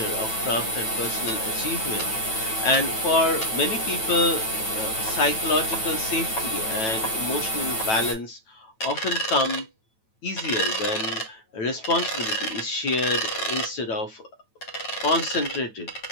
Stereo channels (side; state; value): right; late; 9.1 ms